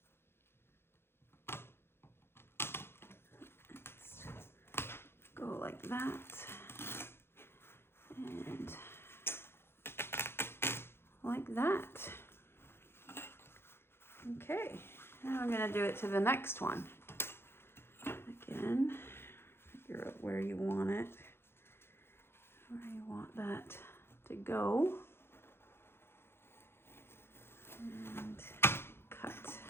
that. And like that. Okay, now I'm gonna do it to the next one. Again, figure out where you want it, where you want that to go. And cut.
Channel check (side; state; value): right; late; 0.11 ms